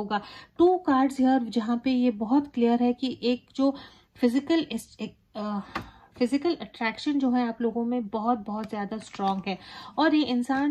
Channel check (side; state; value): both; identical; correlation 1.00